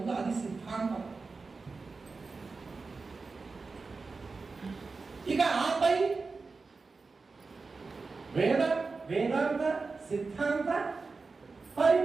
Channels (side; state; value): left; quieter; 4.2 dB